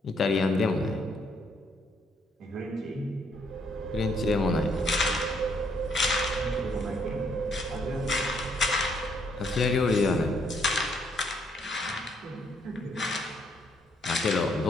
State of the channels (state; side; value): normal; both; correlation 0.71